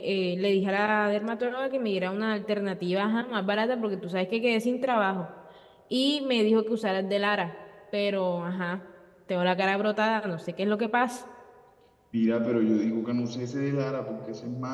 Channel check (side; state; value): both; identical; correlation 1.00